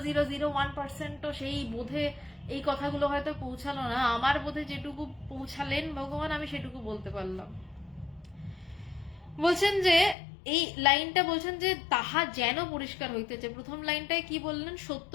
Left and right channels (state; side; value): drops out; right; at 10.2 s